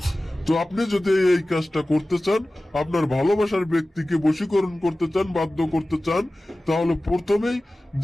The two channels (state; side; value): normal; both; correlation 0.97